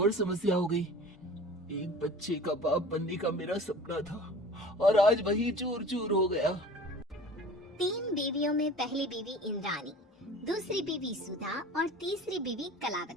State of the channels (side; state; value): both; normal; correlation 0.42